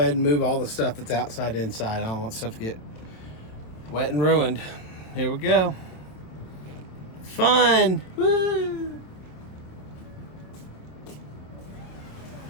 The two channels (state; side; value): late; right; 27 ms